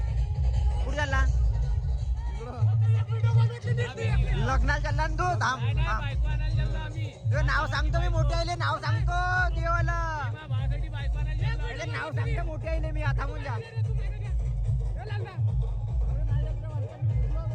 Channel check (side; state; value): both; identical; correlation 1.00